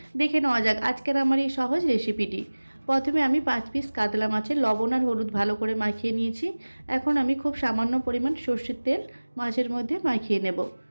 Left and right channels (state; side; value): inverted; both; correlation -1.00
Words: দেখে নেওয়া যাক আজকের আমার এই সহজ রেসিপিটি। প্রথমে আমি 5 পিস কাতলা মাছের লবণ আর হলুদ ভালো করে মাখিয়ে নিয়েছি। এখন আমি খুব সামান্য পরিমাণ সর্ষের তেল মাছের মধ্যে মাখিয়ে নেব।